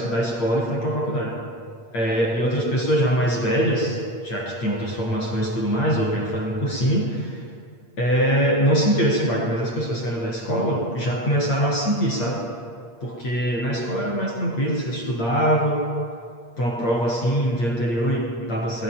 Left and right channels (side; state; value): right; late; 8.6 ms